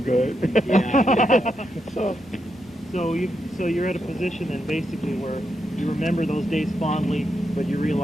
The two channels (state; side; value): normal; both; correlation 0.83